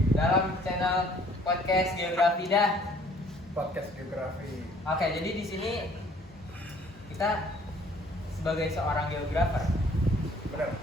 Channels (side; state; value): both; normal; correlation 0.58